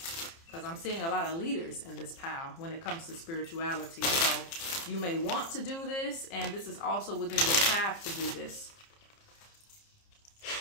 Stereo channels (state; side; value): late; right; 30 ms